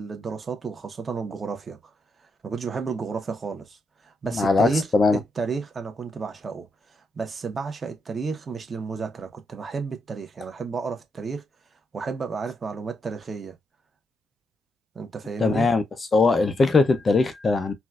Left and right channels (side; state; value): both; normal; correlation 0.82